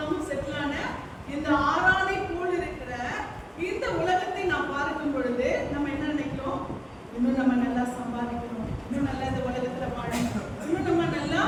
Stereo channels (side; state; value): both; identical; correlation 1.00